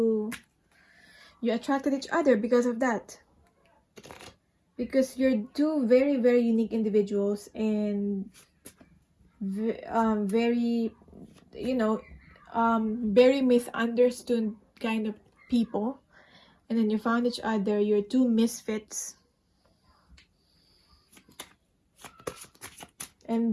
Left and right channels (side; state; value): both; identical; correlation 1.00